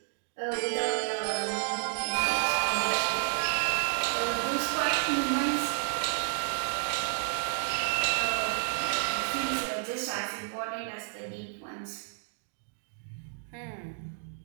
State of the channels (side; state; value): left; silent; digital silence